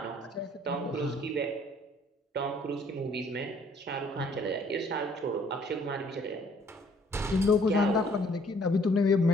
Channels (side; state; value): both; normal; correlation 0.61